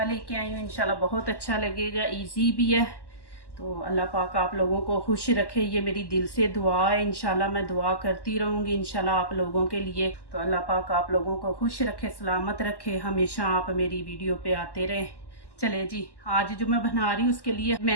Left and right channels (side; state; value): right; late; 1.1 ms